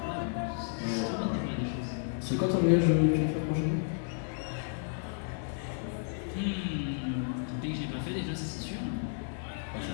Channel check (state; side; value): silent; right; 56 dB below the other